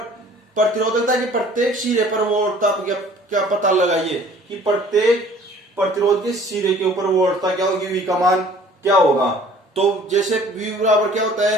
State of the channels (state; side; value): normal; both; correlation 0.52